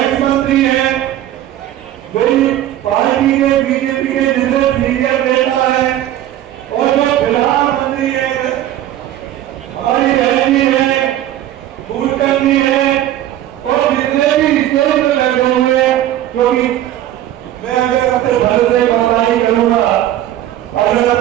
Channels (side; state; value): left; quieter; 12.8 dB